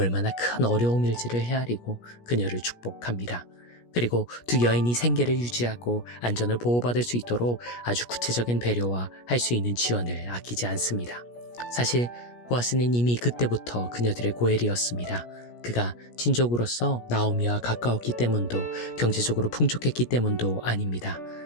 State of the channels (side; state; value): right; late; 17 ms